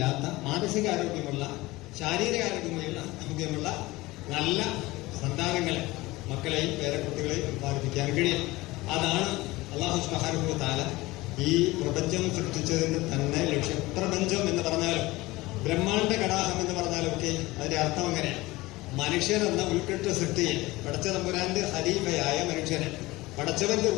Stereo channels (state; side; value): quieter; right; 20.2 dB